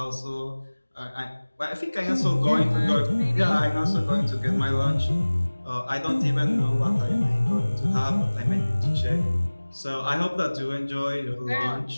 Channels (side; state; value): both; inverted; correlation -1.00